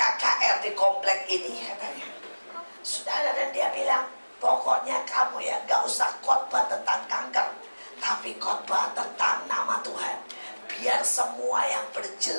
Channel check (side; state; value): both; inverted; correlation -1.00